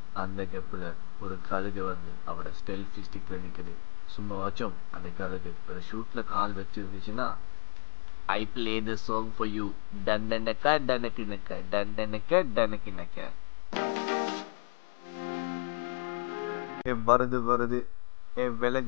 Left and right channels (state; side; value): silent; right; digital silence